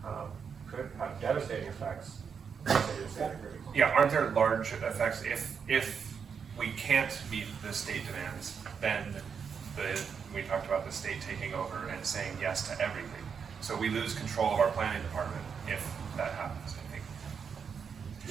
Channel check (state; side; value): quieter; left; 6.5 dB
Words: could have devastating effects. Yeah, aren't there large effects if we can't meet the state demands, then we talked about the state taking over and saying yes to everything. So we lose control of our planning department if that happens, I think.